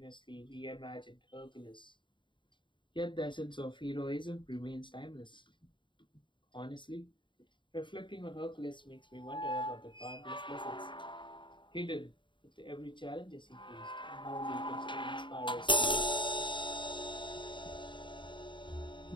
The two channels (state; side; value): late; right; 0.23 ms